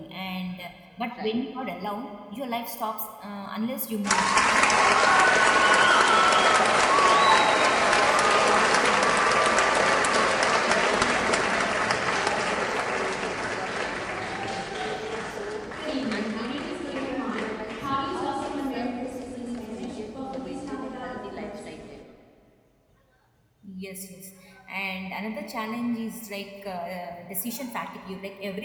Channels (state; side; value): identical; both; correlation 1.00